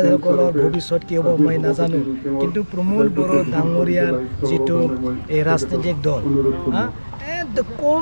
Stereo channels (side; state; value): both; inverted; correlation -1.00